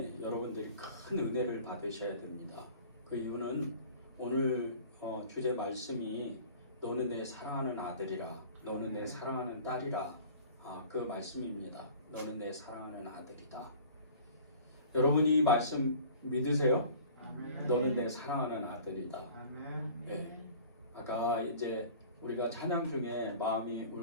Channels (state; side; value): inverted; both; correlation -0.45